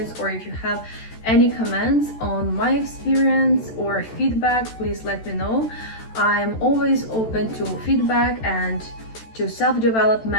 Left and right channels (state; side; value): late; right; 13 ms